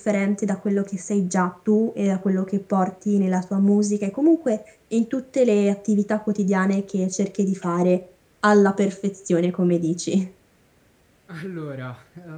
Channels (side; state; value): both; identical; correlation 1.00